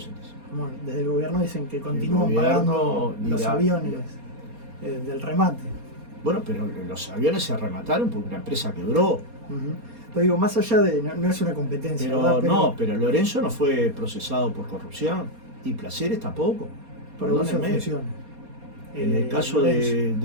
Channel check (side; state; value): left; late; 4.2 ms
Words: bueno, desde el gobierno dicen que continúan gobierno pagando los dirá- aviones del remate. Bueno, pero los aviones se remataron porque la empresa quebró. Ujú. Pero digo, más allá de, no es una competencia, ¿verdad? Pero Lorenzo no fue procesado por corrupción y Placeres tampoco. por abuso de Perdónenme. funciones. En el caso